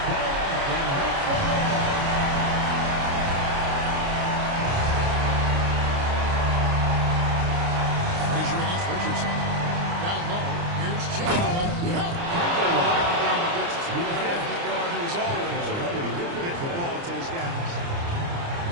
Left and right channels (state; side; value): late; left; 29 ms